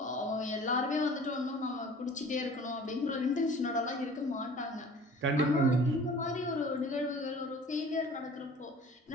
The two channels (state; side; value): normal; both; correlation 0.46